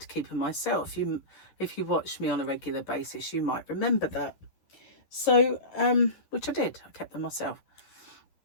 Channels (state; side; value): late; right; 11 ms